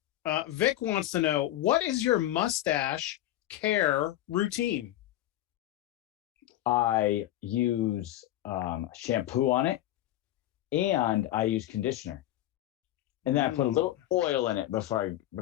Vic wants to know, what is your mustache care routine? I use shampoo on it, and I use conditioner, and then I put a little oil in it before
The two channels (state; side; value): quieter; right; 14.1 dB